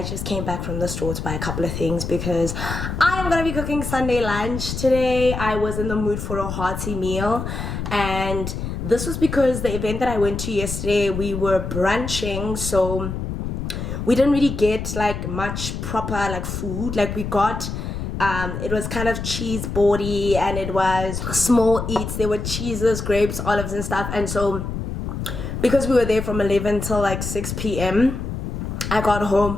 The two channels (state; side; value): noise; left; rumble, 5 dB below the sound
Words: just came back from the store to buy a couple of things because I am going to be cooking Sunday lunch today. I was in the mood for a hearty meal, and this was because the event that I went to yesterday, we were brunching, so we didn't really get like much proper like food. Like we got it was kind of cheese boardy, and it was small eats. There were cheeses, grapes, olives and stuff. And so because we were there from 11 till like 6 p.m, I got